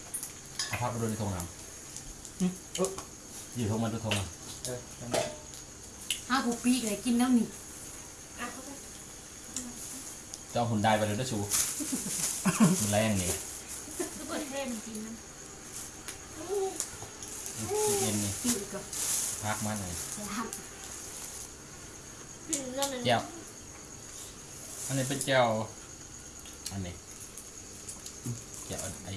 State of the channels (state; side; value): identical; both; correlation 1.00